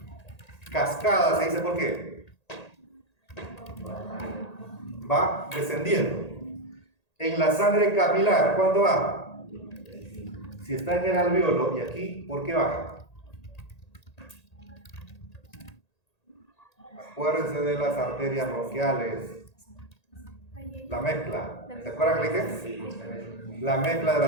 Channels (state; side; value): late; right; 1.8 ms